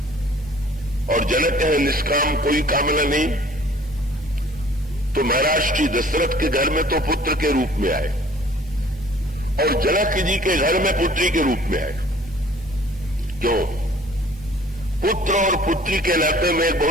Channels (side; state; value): both; normal; correlation 0.53